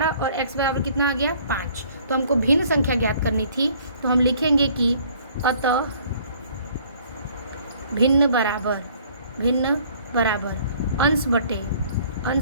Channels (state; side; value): inverted; both; correlation -0.57